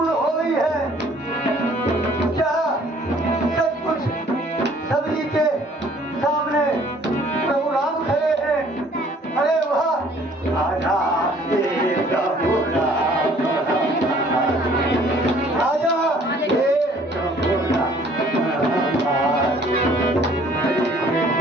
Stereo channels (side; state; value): both; normal; correlation 0.57